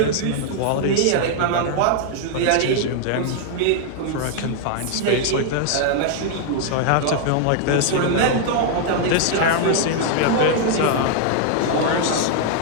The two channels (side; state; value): both; different; correlation 0.00